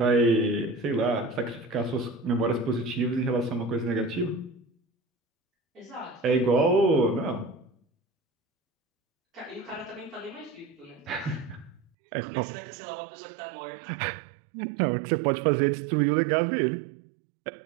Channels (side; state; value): left; drops out; at 11.9 s